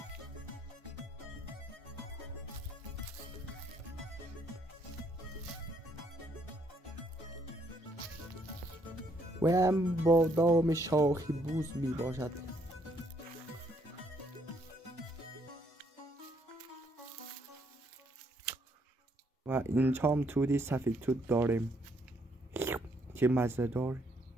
و هم بادام شاخی بوز می باشد. و اینجا هم تودی سفید توت داریم. چه مزه دار.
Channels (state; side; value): normal; both; correlation 0.70